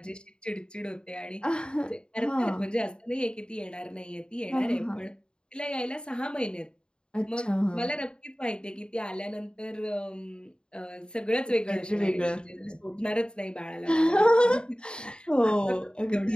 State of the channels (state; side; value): late; right; 0.050 ms